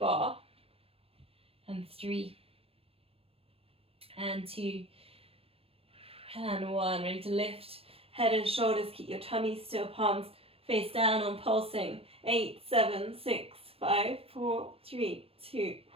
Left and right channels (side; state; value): left; late; 0.28 ms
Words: and 3, and 2, and 1. Ready to lift head and shoulders. Keep your tummy still. Palms face down on pulsing. 8, 7, 6, 5, 4, 3, 2,